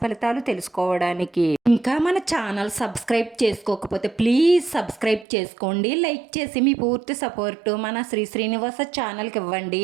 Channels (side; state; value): left; drops out; at 5.2 s